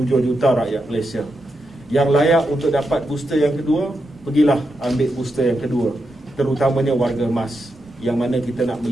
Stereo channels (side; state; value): both; normal; correlation 0.85